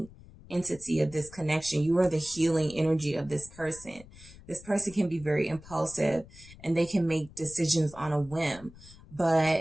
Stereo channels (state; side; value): noise; left; rumble, 20 dB below the sound